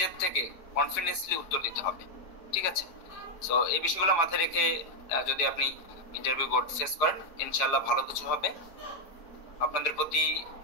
থেকে কনফিডেন্সলি উত্তর দিতে হবে। ঠিক আছে, সো এই বিষয়গুলো মাথায় রেখে যদি আপনি ইন্টারভিউ বোর্ড ফেস করেন, ইনশাআল্লাহ ভালো কিছু হবে। আপনাদের প্রতি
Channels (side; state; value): right; late; 5.0 ms